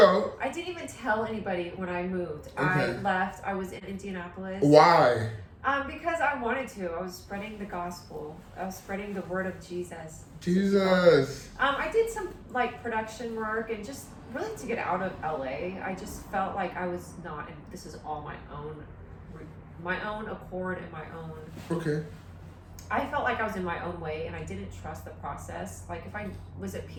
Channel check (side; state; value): both; identical; correlation 1.00